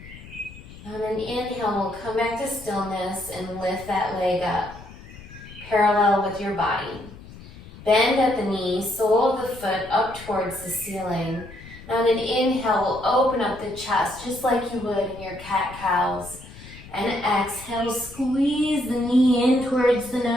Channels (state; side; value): noise; left; rumble, 17 dB below the sound